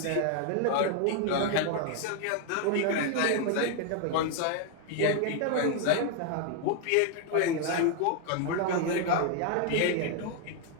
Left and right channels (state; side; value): different; both; correlation 0.00